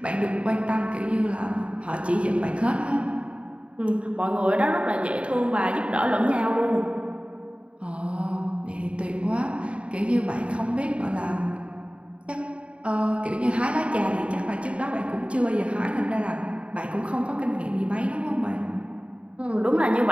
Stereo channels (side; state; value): left; late; 0.060 ms